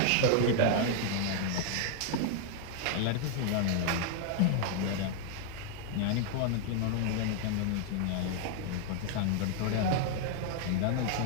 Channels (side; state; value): both; different; correlation 0.00